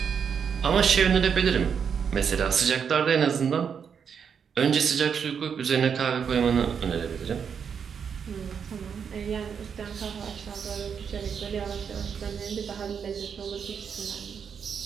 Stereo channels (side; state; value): left; quieter; 7.0 dB